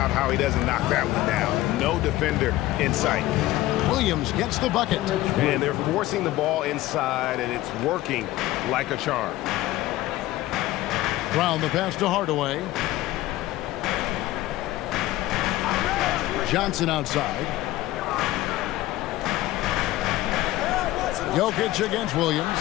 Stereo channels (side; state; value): right; quieter; 16.4 dB